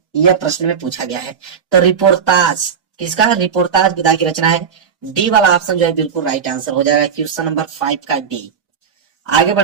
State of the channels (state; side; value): quieter; left; 7.0 dB